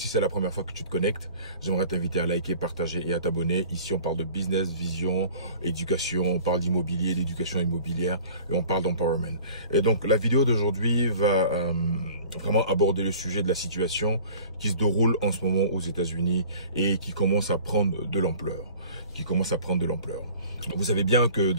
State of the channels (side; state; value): both; inverted; correlation -0.46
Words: c'est la première fois que tu te connectes, j'aimerais t'inviter à liker, partager et à t'abonner. Ici, on parle de business, vision, éducation, on parle d'immobilier, d'éducation immobilière et on parle d'empowerment. Et donc la vidéo d'aujourd'hui va vraiment aborder le sujet de la situation qui se déroule en ce moment aux États-Unis et qui commence à prendre de l'ampleur. Vous savez bien que